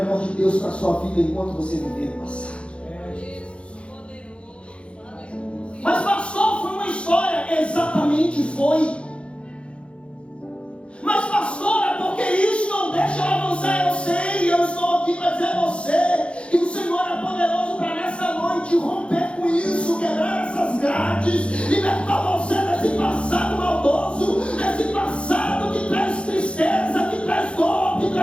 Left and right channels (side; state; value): right; late; 0.059 ms